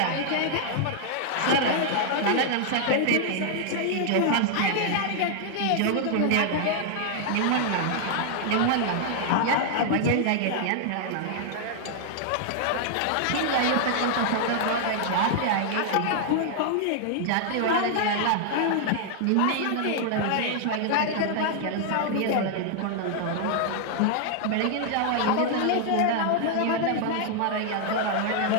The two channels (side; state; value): both; different; correlation -0.01